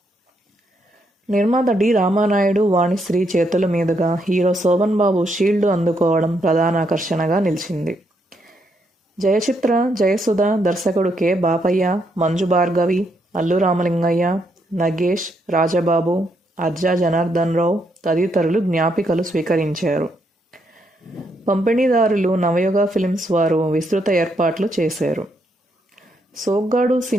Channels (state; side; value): normal; both; correlation 0.76